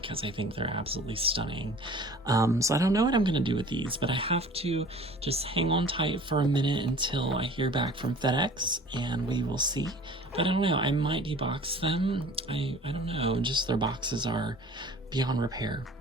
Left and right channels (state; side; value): normal; both; correlation 0.46